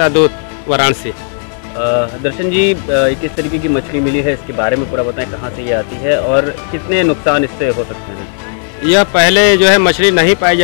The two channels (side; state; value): right; silent; digital silence